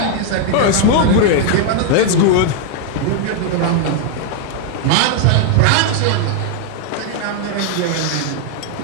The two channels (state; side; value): different; both; correlation 0.00